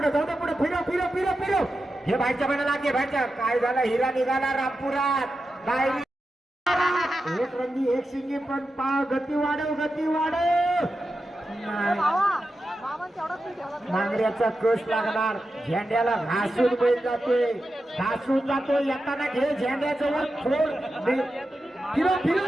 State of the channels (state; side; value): normal; both; correlation 0.90